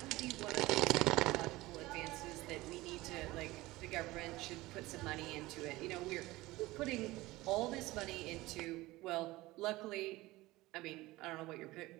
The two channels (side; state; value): left; quieter; 19.2 dB